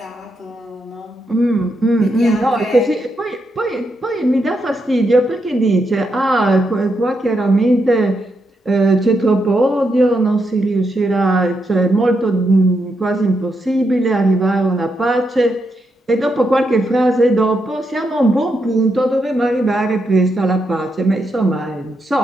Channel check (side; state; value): both; normal; correlation 0.82